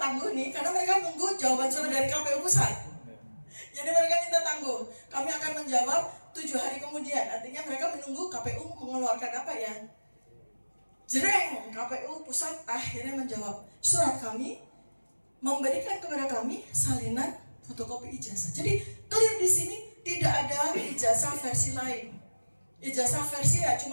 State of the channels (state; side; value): inverted; both; correlation -1.00